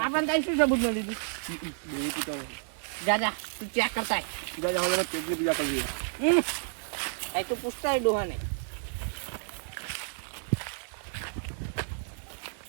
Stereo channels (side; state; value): left; silent; digital silence